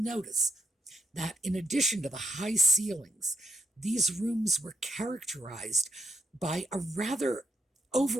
that in addition to the high ceilings, these rooms were characterized by a rather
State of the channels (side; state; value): both; normal; correlation 0.83